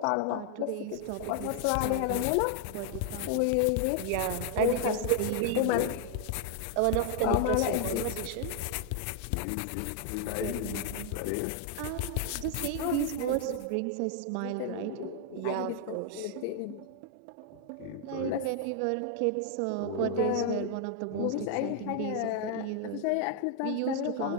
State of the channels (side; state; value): both; different; correlation 0.00